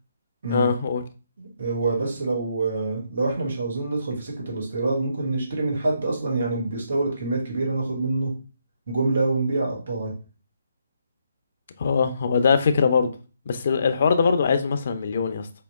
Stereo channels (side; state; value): both; inverted; correlation -0.76